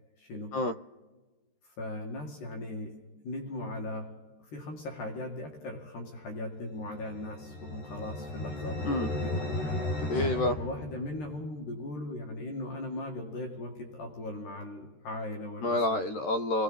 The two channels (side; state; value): right; late; 13 ms